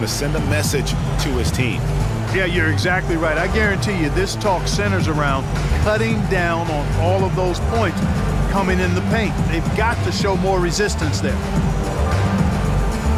to send a message to his team. Yeah, you're exactly right. I guarantee you this talk centers around cutting down on all of those points coming in the paint. They've got to show more resistance there.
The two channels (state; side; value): identical; both; correlation 1.00